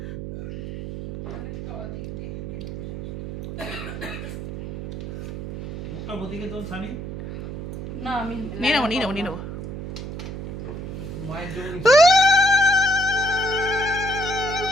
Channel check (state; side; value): noise; right; hum, 8 dB below the sound